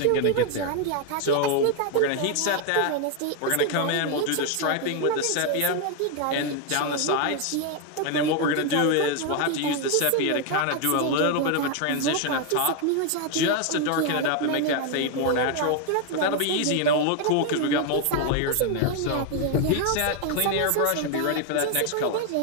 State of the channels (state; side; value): different; both; correlation 0.01